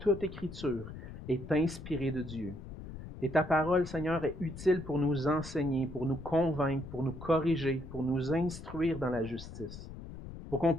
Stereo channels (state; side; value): noise; left; rumble, 12 dB below the sound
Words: écriture est inspirée de Dieu. Et ta parole, Seigneur, est utile pour nous enseigner, pour nous convaincre, pour nous corriger, pour nous instruire dans la justice, pour qu'on